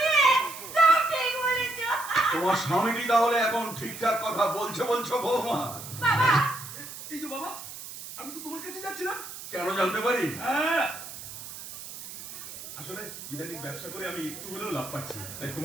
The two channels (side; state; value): right; noise; hiss, 12 dB below the sound